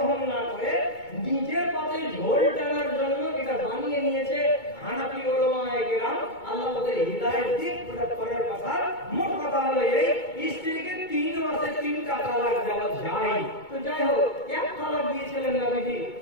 না করে নিজের পাতে ঝোল টানার জন্য এটা বানিয়ে নিয়েছে হানাফি উলামায়ে কেরাম। আল্লাহ ওদের হিদায়াত দিক, ওটা পরের কথা। মোট কথা হলো এই, স্ত্রীকে 3 মাসে 3টা তালাক দেওয়া যায়। তো যাই হোক, এক তালাক দিয়েছিলেন নবীজি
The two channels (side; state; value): right; late; 2.2 ms